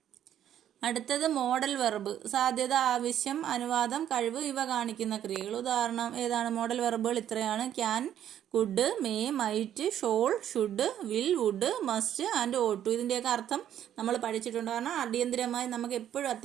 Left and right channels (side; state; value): left; quieter; 10.6 dB